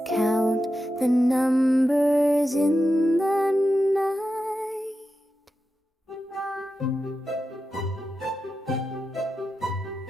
count the numbers in the night.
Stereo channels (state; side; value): normal; both; correlation 0.90